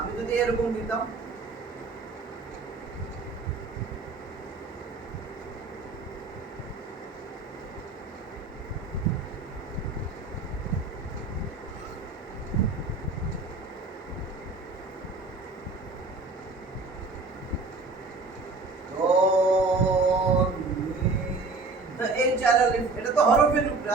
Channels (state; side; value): quieter; left; 3.7 dB